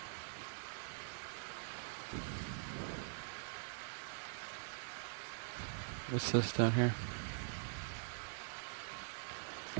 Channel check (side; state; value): left; silent; digital silence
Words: What's this down here?